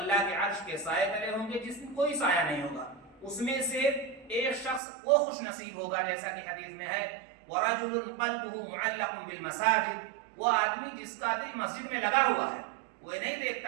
کے عرش کے سائے تلے ہوں گے جس میں کوئی سایہ نہیں ہوگا. اس میں سے ایک شخص وہ خوش نصیب ہوگا جیسا کہ حدیث میں ہے ورجل قلبه معلق بالمساجد, وہ آدمی جس کا دل مسجد میں لگا ہوا ہے, وہ نہیں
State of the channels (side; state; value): left; drops out; at 4.8 s